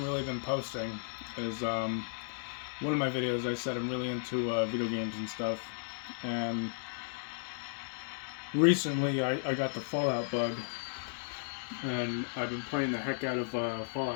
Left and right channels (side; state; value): right; silent; digital silence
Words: really been posting is one of my videos I said I'm really into video games and stuff, and recently I got the Fallout bug, and I've been playing the heck out of